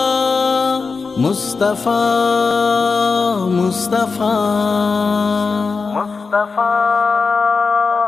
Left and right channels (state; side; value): quieter; right; 4.6 dB